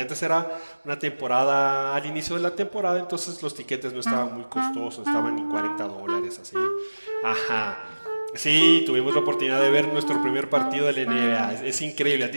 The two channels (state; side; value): inverted; both; correlation -1.00